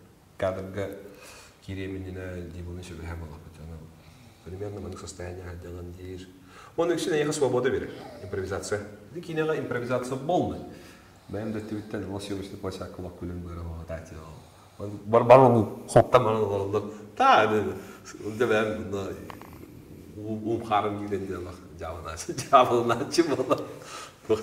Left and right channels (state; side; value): identical; both; correlation 1.00